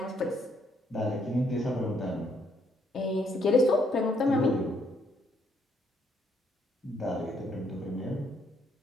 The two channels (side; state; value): both; normal; correlation 0.71